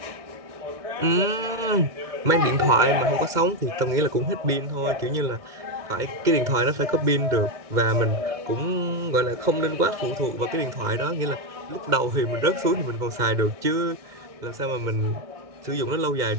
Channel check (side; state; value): left; late; 2.2 ms